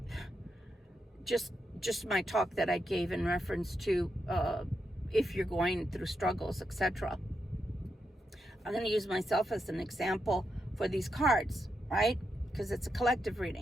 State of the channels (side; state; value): both; normal; correlation 0.84